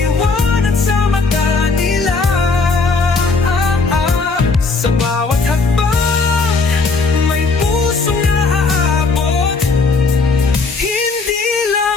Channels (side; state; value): right; quieter; 4.1 dB